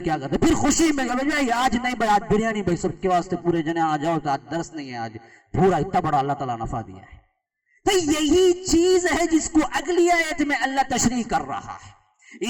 کرتے, پھر خوشی میں بھائی آج نہیں بھائی آج بریانی بھائی سب کے واسطے پورے جنے آ جاؤ, تو آج درس نہیں ہے, آج پورا اتنا بڑا اللہ تعالیٰ نفع دیا ہے. تو یہی چیز ہے جس کو اگلی آیت میں اللہ تشریح کر رہا ہے,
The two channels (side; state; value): both; identical; correlation 1.00